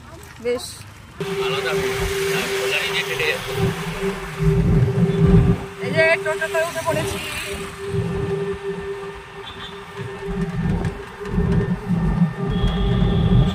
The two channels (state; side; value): identical; both; correlation 1.00